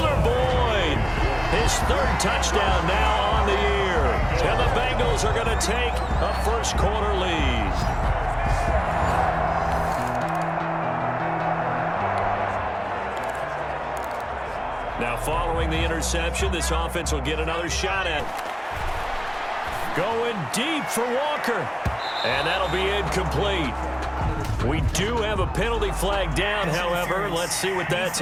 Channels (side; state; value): both; identical; correlation 1.00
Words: Boyd. His 3rd touchdown now on the year. And the Bengals are going to take a first-quarter lead. Now, following the interception, this offense will get another shot at. Going deep for Walker. And that'll be incomplete. We do have a penalty flag down, however. Let's see what that's